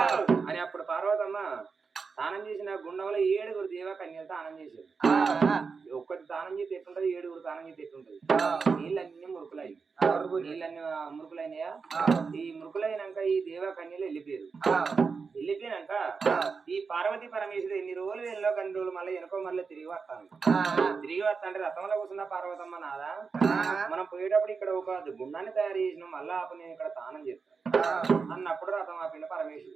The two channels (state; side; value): quieter; left; 5.1 dB